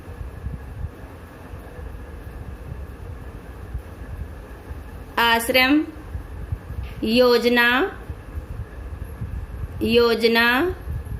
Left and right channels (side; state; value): both; identical; correlation 1.00